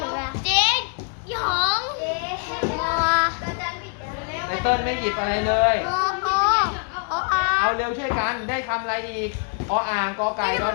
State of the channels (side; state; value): right; quieter; 39.8 dB